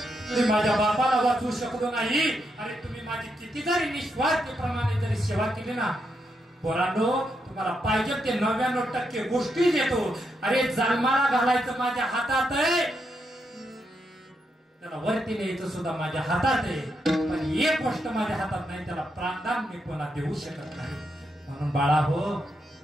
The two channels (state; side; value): normal; both; correlation 0.81